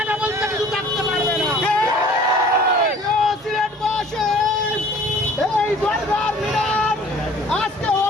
বলতে কিছু থাকতে পারবে না। সিলেটবাসী, এই দরবার মিনার আজকে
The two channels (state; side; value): normal; both; correlation 0.50